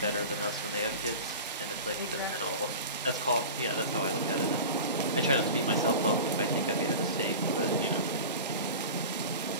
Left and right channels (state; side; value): inverted; both; correlation -0.33